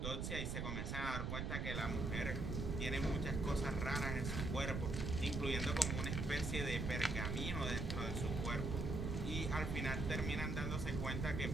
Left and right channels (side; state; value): right; noise; rumble, 1 dB below the sound